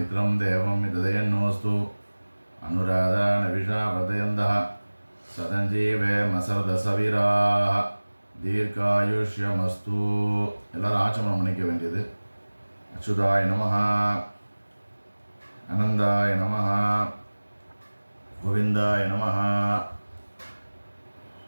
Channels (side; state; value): both; inverted; correlation -1.00